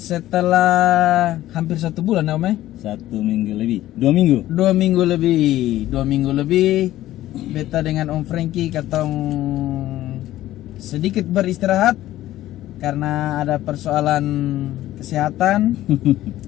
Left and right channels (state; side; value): quieter; right; 14.6 dB